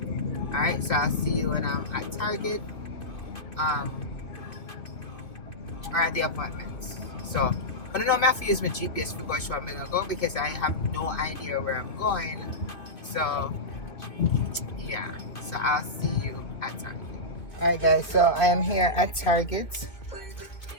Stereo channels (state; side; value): late; right; 2.5 ms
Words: Alright, so I'll see you when I'm at Target or at the appointment. So I don't know if I have to use my GPS to go show I'm gonna go because I have no idea where I'm going. So yeah, so I'll see you at Target. Alright guys, so I am here at Target.